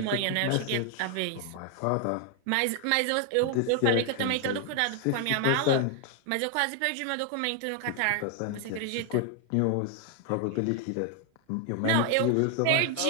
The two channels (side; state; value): both; different; correlation 0.00